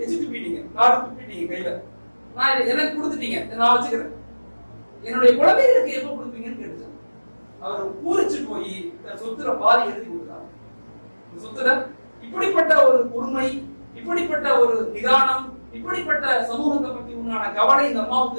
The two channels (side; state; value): both; inverted; correlation -1.00